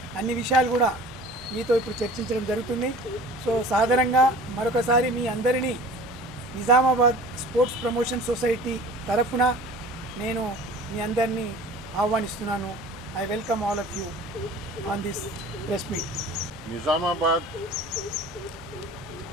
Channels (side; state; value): both; normal; correlation 0.43